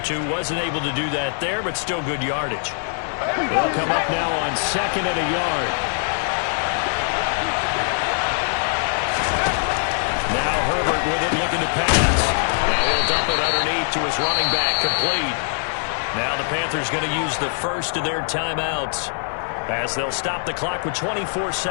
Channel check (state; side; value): silent; right; digital silence